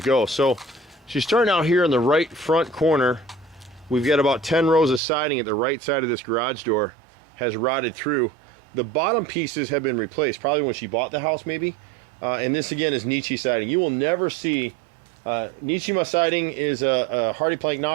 go. So she's starting out here in the right front corner. We've got about 10 rows of siding at the right side of this garage door has rotted through. The bottom pieces have been replaced, probably when she bought the house maybe. And this again is Nietzsche siding. You will never see, Nietzsche siding is a Hardy Plank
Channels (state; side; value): drops out; left; at 5.0 s